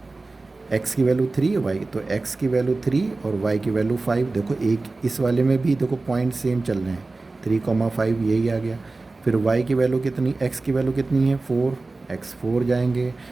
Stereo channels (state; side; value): quieter; left; 3.4 dB